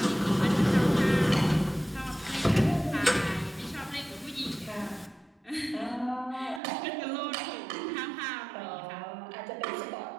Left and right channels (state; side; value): drops out; left; at 6.6 s